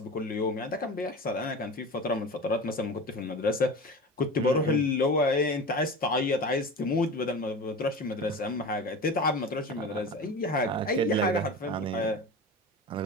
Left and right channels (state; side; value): normal; both; correlation 0.31